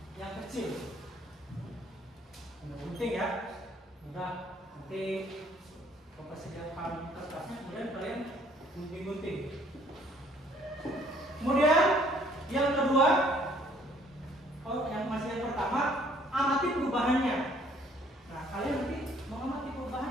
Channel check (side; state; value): both; normal; correlation 0.61